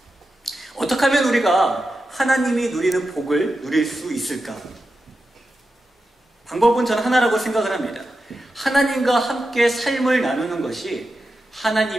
어떻게 하면 우리가 하나님이 누리는 복을 누릴 수 있을까? 방법은 저는 하나라고 생각을 합니다. 하나님과 함께 삶을 나누는 것이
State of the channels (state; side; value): normal; both; correlation 0.90